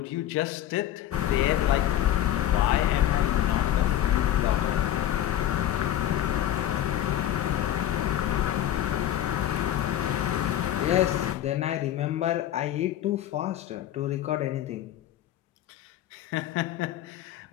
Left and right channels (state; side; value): quieter; right; 12.1 dB